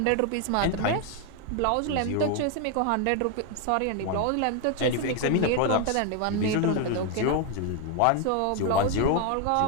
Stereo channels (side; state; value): both; different; correlation 0.01